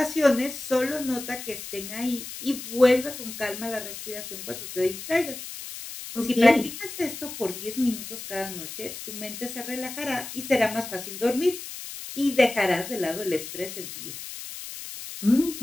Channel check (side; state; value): left; noise; hiss, 10 dB below the sound